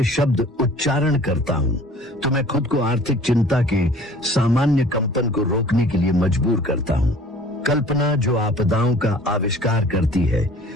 शब्द उच्चारण करता हूँ तो मैं खुद को आर्थिक चिंता के सामान्य कंपन को रोकने के लिए मजबूर करता हूँ। कल्पना जो आपदाओं का आविष्कार करती है,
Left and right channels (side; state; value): both; normal; correlation 0.49